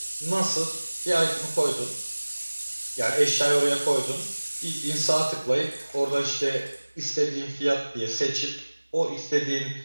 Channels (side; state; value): both; inverted; correlation -1.00